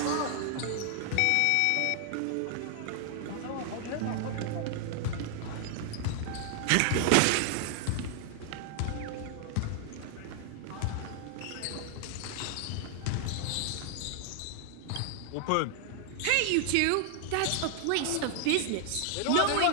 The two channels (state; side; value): different; both; correlation 0.00